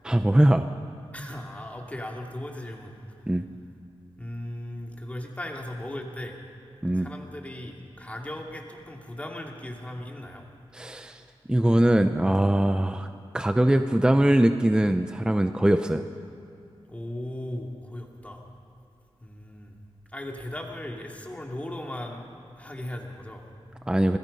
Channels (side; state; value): both; normal; correlation 0.98